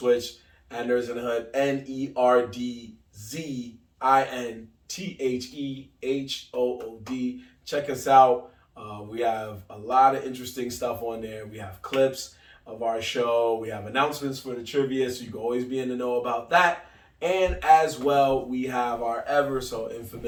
at Nerds in the Hood. NERDZINTHEHOOD. Check us out. We have a lot of interesting stuff on there. We have clips of our show. We have announcements for the trivia, so you can always be in the know about that. And as well, we have our ever so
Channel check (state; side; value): identical; both; correlation 1.00